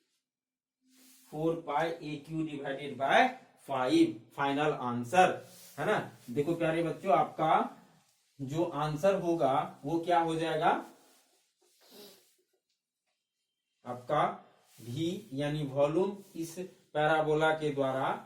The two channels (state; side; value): identical; both; correlation 1.00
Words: 4 पाई a cube divided by 5, final answer, है ना। देखो प्यारे बच्चों, आपका जो आंसर होगा वो क्या हो जाएगा, आपका v यानी वॉल्यूम इस पैराबोला के द्वारा